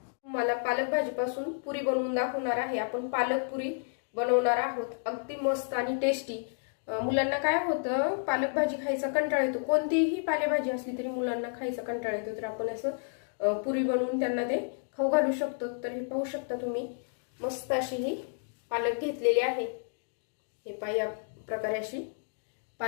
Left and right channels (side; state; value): right; silent; digital silence